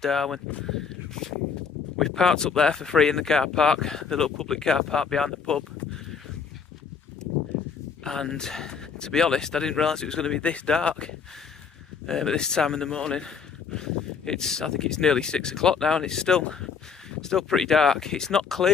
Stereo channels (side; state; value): right; quieter; 6.0 dB